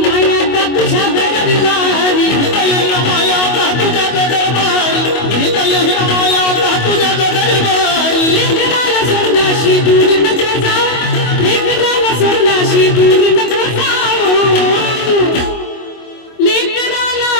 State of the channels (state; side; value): late; right; 25 ms